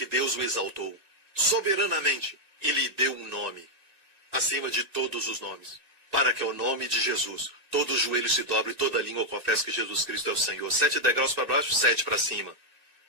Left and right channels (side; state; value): left; late; 2.6 ms